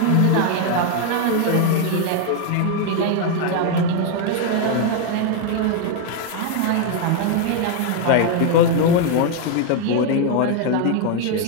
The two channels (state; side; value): different; both; correlation 0.01